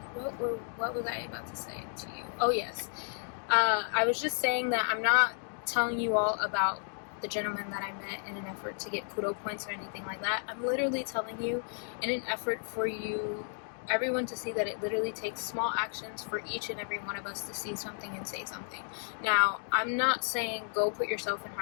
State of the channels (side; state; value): right; silent; 56 dB below the other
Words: What was I about to say to you? Oh yes, I was just saying that I'm not telling you all about the gentleman that I met in an effort to get kudo points or anything like that. I'm literally telling you in an effort for you, everyone, to see that it literally takes small actions for each and every one of us to see something and say something. Now, I'm not saying go put yourself in